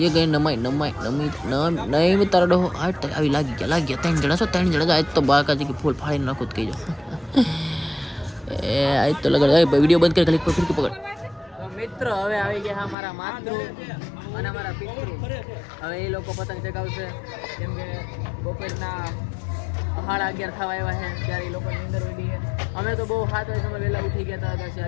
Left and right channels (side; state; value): right; drops out; at 13.0 s